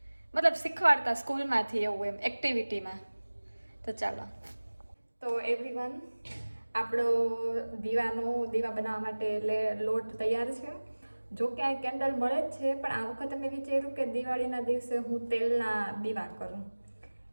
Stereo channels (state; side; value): inverted; both; correlation -1.00